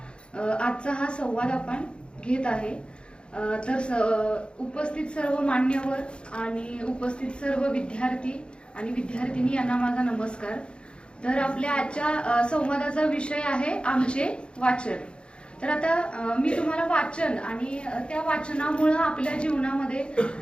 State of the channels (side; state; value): right; late; 0.055 ms